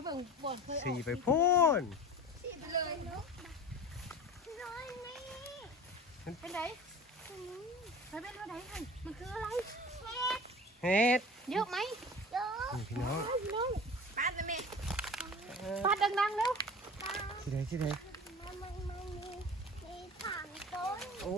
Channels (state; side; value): normal; both; correlation 0.37